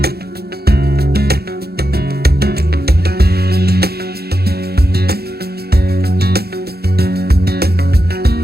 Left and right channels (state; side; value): late; left; 0.46 ms